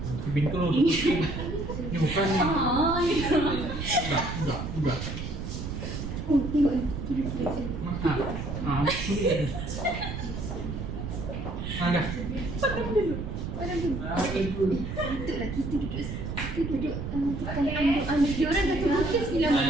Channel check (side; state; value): right; noise; rumble, 5 dB below the sound